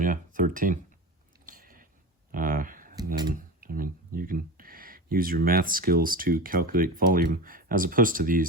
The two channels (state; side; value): normal; both; correlation 0.27